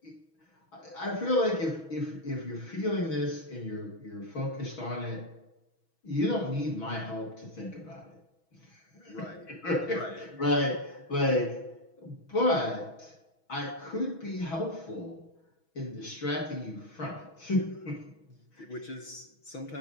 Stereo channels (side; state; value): right; late; 6.2 ms